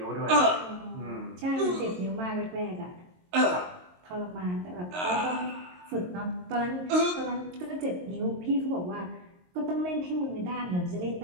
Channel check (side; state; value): left; late; 22 ms